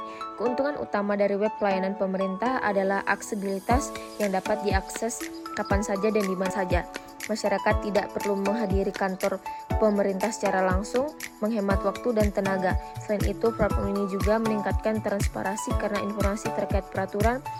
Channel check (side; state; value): both; identical; correlation 1.00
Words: Keuntungan utama dari web pelayanan pemerintah adalah aksesibilitas yang dapat diakses kapan saja dan di mana saja. Masyarakat tidak perlu menghadiri kantor pemerintah secara langsung, menghemat waktu dan tenaga. Selain itu, platform ini juga meningkatkan transparansi karena informasi terkait peraturan,